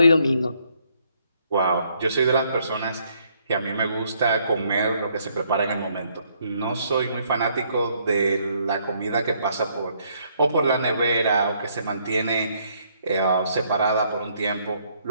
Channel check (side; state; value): both; inverted; correlation -0.70